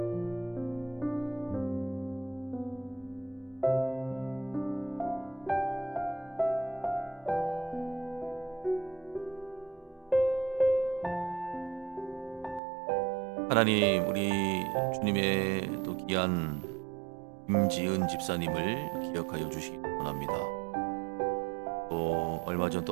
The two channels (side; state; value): left; drops out; at 12.6 s